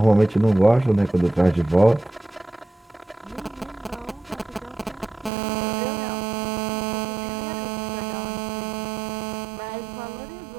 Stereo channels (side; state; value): left; drops out; at 5.3 s